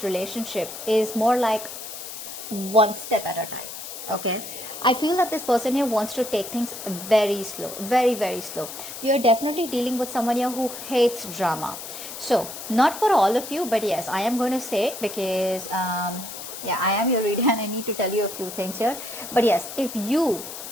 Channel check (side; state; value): left; noise; hiss, 10 dB below the sound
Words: relationship is more like one step at a time. Okay, I feel that this person here wants to take things very slow, very, very slow. You are definitely dealing with someone here who hates drama. So not for all of you, but yes, I am going to say it because yeah, I am your reader and I need to tell you a few things here. But yes, if you,